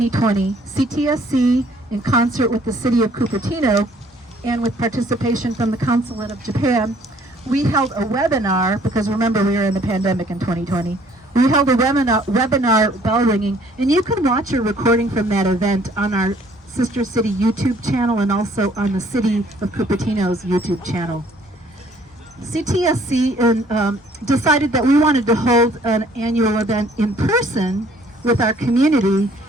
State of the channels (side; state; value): both; normal; correlation 0.60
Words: CTSC, in concert with the city of Cupertino and with participation from the Consulate of Japan, we held a webinar, because remember we were in the pandemic in 2020. We held a webinar bell ringing, and you can watch a recording from that event on our Sister City YouTube channel and also on the City of Cupertino's YouTube channel. CTSC decided that we wanted to hold an annual event in person with our community,